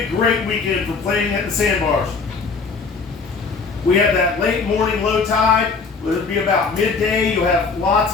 a great weekend for playing at the sandbars. We have that late morning low tide. It'll be about midday. You'll have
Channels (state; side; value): quieter; right; 4.7 dB